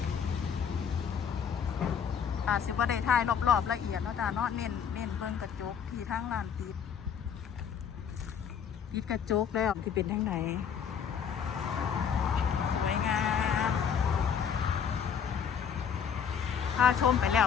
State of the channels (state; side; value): quieter; right; 7.5 dB